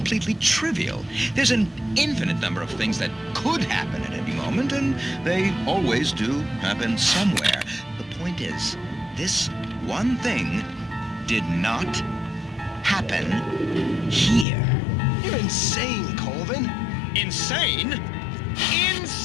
trivial. There's an infinite number of things that could happen at any moment, and they always do happen somewhere. The point is, this one thing did not happen here. You're insane, Colvin. Insane?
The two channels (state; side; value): drops out; right; at 14.5 s